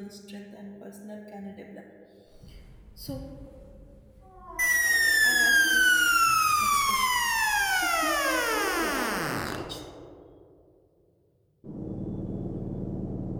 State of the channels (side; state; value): both; identical; correlation 1.00